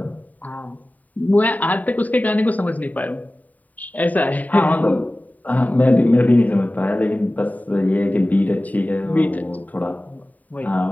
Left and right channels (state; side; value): late; right; 0.075 ms